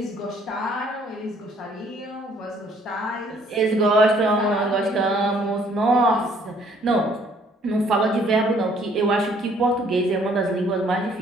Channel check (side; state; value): both; normal; correlation 0.62